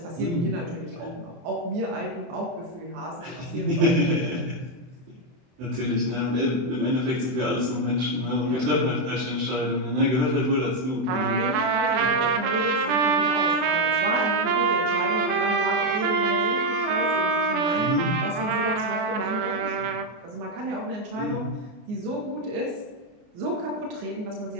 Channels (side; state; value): left; late; 23 ms